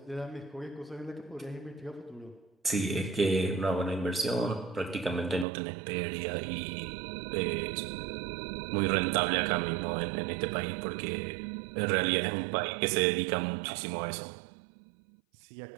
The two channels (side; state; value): left; drops out; at 5.5 s